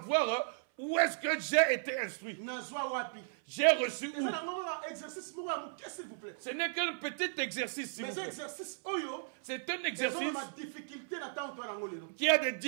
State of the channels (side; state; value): left; silent; 54 dB below the other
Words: où est-ce que j'ai été instruit. J'ai reçu où? Ce n'est qu'un petit exercice. C'est un exercice qui a des